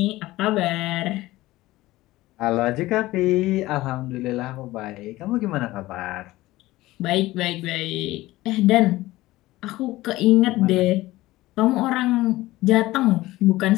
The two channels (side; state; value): right; quieter; 17.8 dB